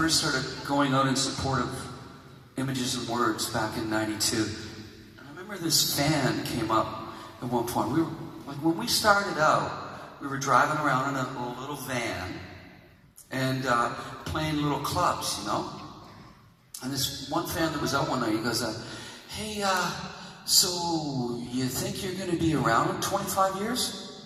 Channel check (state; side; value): identical; both; correlation 1.00